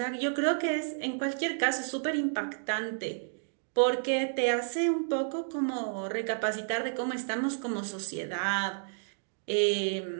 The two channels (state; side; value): silent; left; digital silence